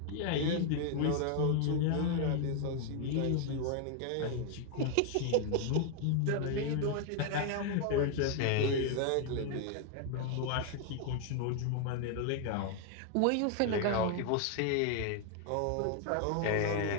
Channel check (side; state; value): both; different; correlation 0.00